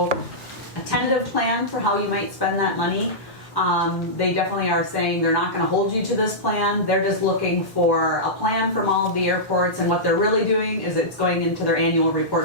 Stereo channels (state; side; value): normal; both; correlation -0.14